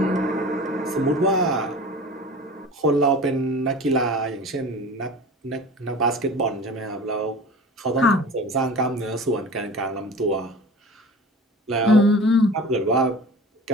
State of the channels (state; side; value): normal; both; correlation 0.38